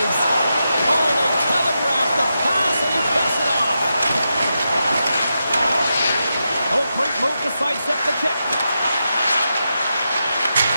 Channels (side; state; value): both; inverted; correlation -0.87